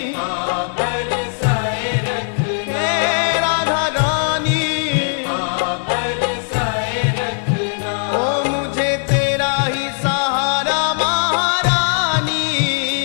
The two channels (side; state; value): right; silent; 67 dB below the other